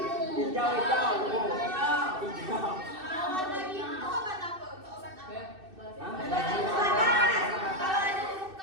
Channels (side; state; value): left; late; 2.6 ms